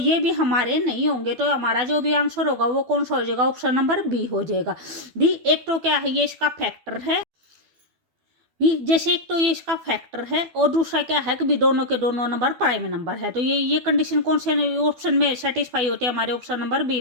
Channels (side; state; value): left; late; 12 ms